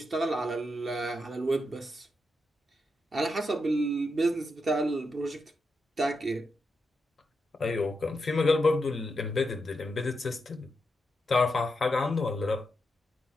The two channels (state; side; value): normal; both; correlation 0.85